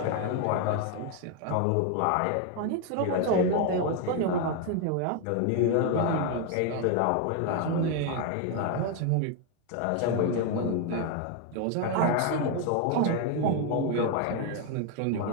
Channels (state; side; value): different; both; correlation 0.01